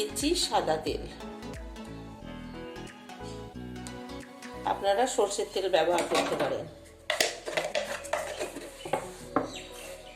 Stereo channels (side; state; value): both; identical; correlation 1.00